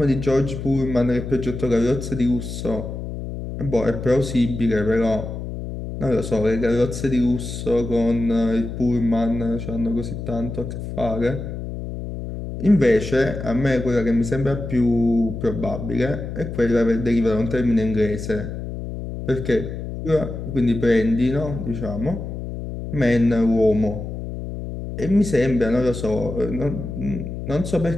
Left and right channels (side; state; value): left; noise; hum, 7 dB below the sound